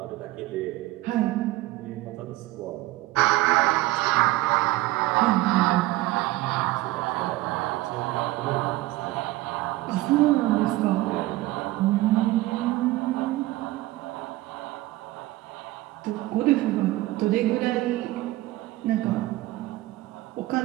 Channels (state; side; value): quieter; left; 17.8 dB